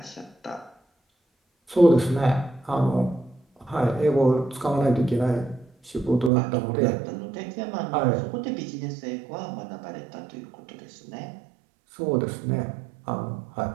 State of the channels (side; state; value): left; drops out; at 6.3 s